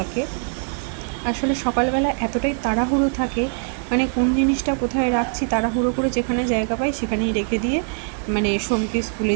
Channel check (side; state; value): left; silent; 56 dB below the other